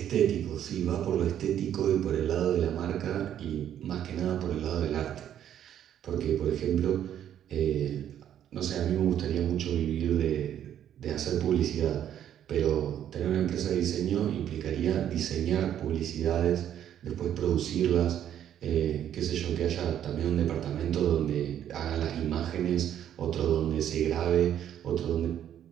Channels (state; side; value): quieter; left; 10.3 dB